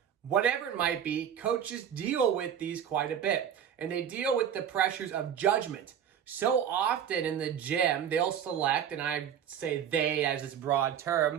Whatever it might be, coaches deal with these quite a bit, and they deal with the pressures of judgment. So often in the gym, they'll select, and I say they as this broad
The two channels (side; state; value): left; quieter; 8.9 dB